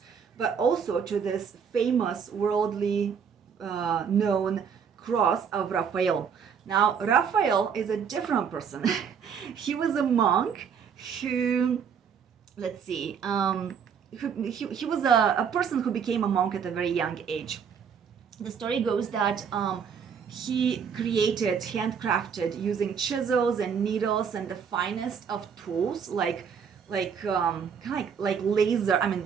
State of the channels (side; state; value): left; quieter; 7.0 dB